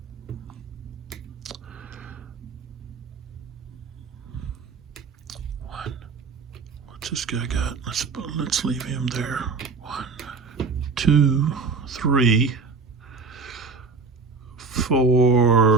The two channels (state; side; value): quieter; left; 4.5 dB